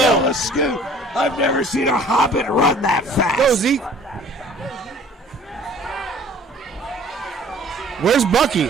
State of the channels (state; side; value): normal; both; correlation 0.51